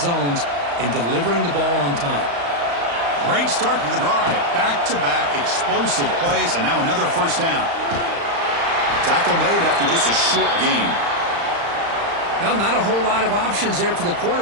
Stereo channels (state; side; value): late; left; 35 ms